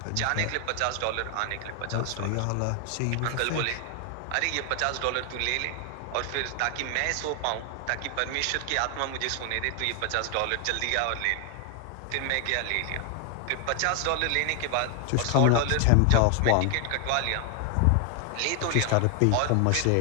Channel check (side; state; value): both; different; correlation 0.00